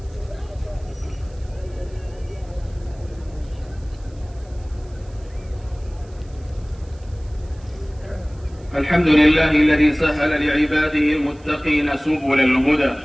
الحمد لله الذي سهل لعباده المتقين سبل الهدى،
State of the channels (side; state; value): right; noise; hiss, 29 dB below the sound